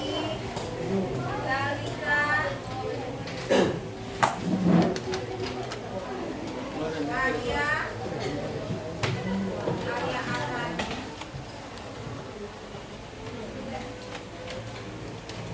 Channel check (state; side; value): identical; both; correlation 1.00